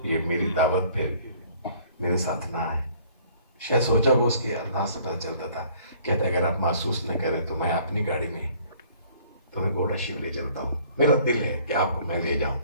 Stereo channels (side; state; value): both; inverted; correlation -0.57